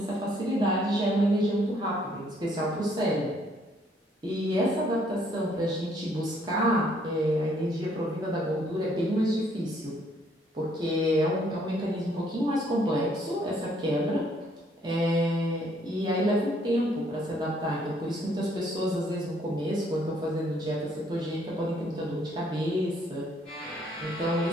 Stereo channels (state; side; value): normal; both; correlation 0.66